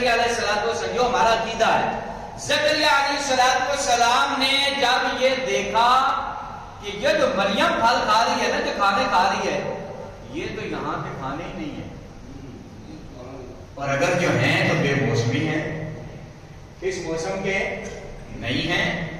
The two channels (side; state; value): both; identical; correlation 1.00